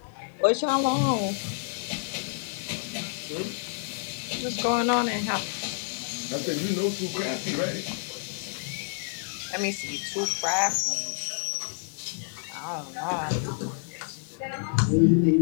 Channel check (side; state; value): right; silent; 59 dB below the other